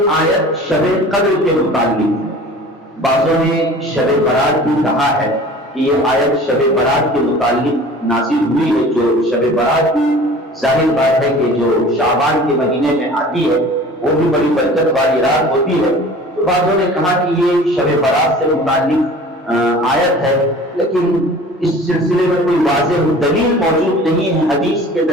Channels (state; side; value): normal; both; correlation 0.43